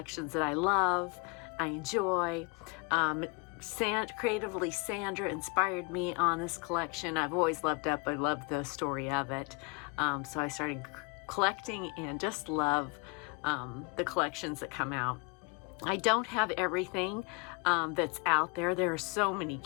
that I love, I enjoy. Creatively, Sandra inspired me on this collection. I've always loved Up. I love the story of it. So I started collecting and just love the collections that come out. I don't have everything that's out there. There are so many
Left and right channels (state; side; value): quieter; right; 31.3 dB